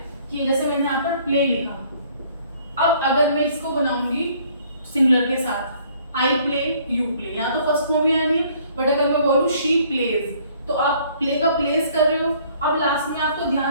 कि जैसे मैंने यहाँ पर प्ले लिखा, अब अगर मैं इसको बनाऊंगी सिंगुलर के साथ, आई प्ले, यू प्ले, यहाँ तो फर्स्ट फॉर्म ही आनी है, बट अगर मैं बोलूँ शी प्लेज तो आप प्ले का प्लेस कर रहे हो। अब लास्ट में आपको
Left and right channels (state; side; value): inverted; both; correlation -0.60